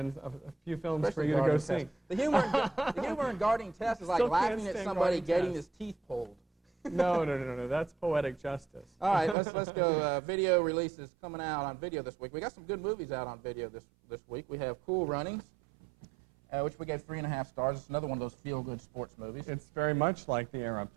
a few films Especially for you to go see. Test. The humor in Guarding Test is like Still laughing can't at stand somebody Guarding getting Test. his teeth pulled. No, that's poetic justice. All right, let's go. Video releases coming out on video this week. We got some good movies out on video this week. We have Cool Runnings, which we gave 3.5 stars. It's another one of those feel-good sports movies. It's very much like The Air Up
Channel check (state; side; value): drops out; left; at 9.3 s